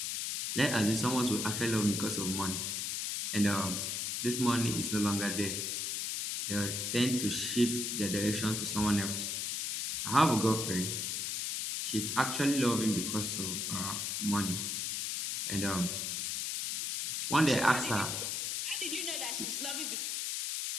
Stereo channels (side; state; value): left; noise; hiss, 1 dB below the sound